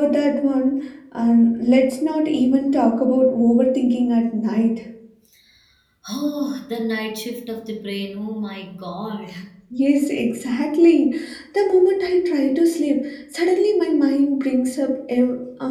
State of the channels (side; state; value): both; identical; correlation 1.00